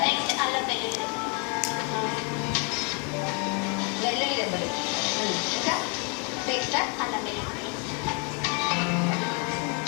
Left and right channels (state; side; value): quieter; right; 34.5 dB